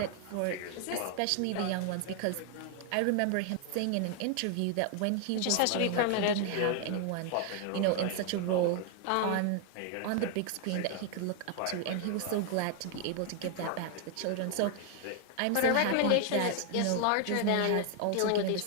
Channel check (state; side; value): different; both; correlation 0.00